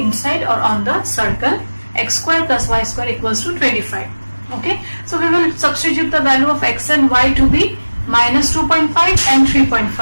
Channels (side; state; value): both; inverted; correlation -1.00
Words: or on the circle x square plus y square equals to 25. Okay, so we will substitute the value of x and y to be minus 2.5 and